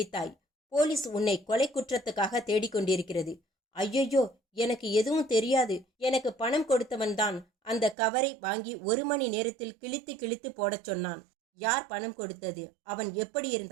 போலீஸ் உன்னை கொலை குற்றத்துக்காக தேடிக்கொண்டிருக்கிறது. ஐயையோ, எனக்கு எதுவும் தெரியாது. எனக்கு பணம் கொடுத்தவன் தான் அந்த கவரை வாங்கி 1 மணி நேரத்தில் கிழித்து கிழித்து போடச் சொன்னான். யார் பணம் கொடுத்தது? அவன் எப்படி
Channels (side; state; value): left; drops out; at 8.0 s